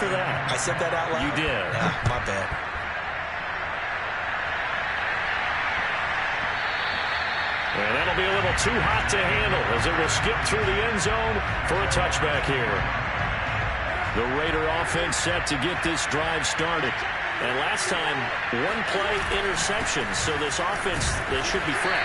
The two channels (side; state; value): both; identical; correlation 1.00